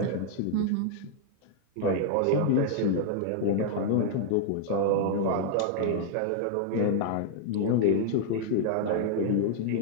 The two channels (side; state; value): both; different; correlation 0.00